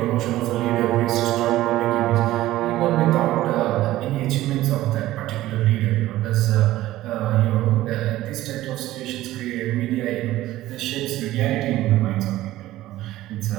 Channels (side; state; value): left; quieter; 15.6 dB